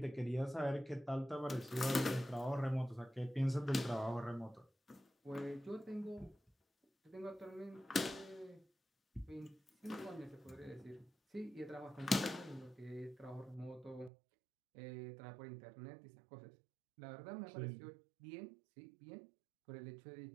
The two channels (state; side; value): drops out; left; at 14.1 s